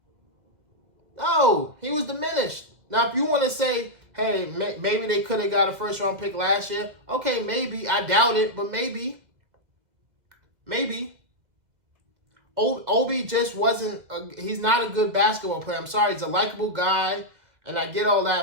No, he was diminished. Now, if you want to say, hey, maybe they could have got a first-round pick last year, okay, maybe. I doubt it, but maybe. Maybe. Obi just wasn't, he's not a good basketball player. I'm sorry, he's a likable guy, and I get all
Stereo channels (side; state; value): left; late; 2.0 ms